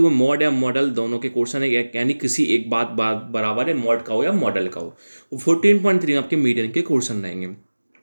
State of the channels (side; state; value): both; inverted; correlation -1.00